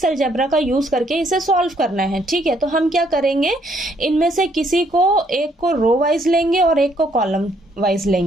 अलजेब्रा का यूज करके इसे सॉल्व करना है। ठीक है, तो हम क्या करेंगे, इनमें से किसी को एक को रो वाइज लेंगे और एक को कॉलम वाइज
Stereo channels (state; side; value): normal; both; correlation 0.69